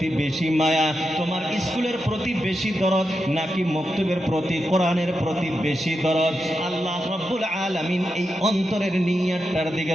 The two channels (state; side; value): normal; both; correlation 0.87